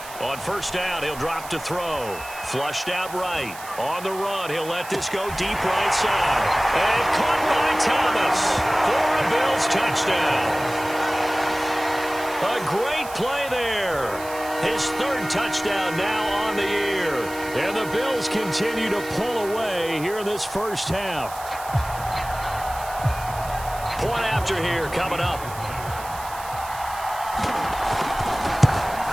On first down, he'll drop to throw. Flushed out right. On the run, he'll let this go deep right side. And caught by Thomas for a Bills touchdown. A great play there. His third touchdown now on the year. And the Bills continue to pull away here in this first half. Point after here coming up.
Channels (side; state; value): right; noise; hiss, 15 dB below the sound